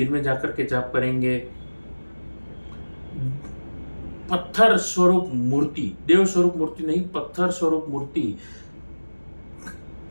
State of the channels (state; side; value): inverted; both; correlation -1.00